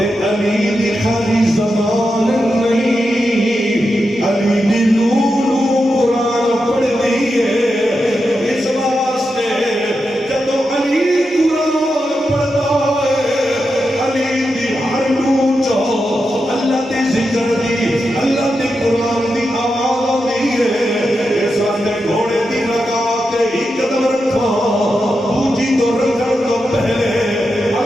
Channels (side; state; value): both; normal; correlation 0.88